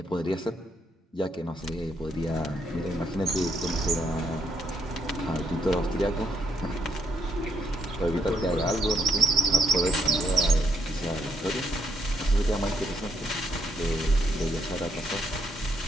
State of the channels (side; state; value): both; normal; correlation 0.75